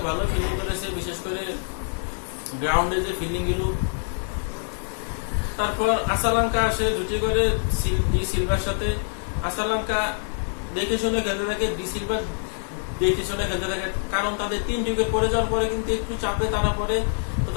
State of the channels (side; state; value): right; silent; digital silence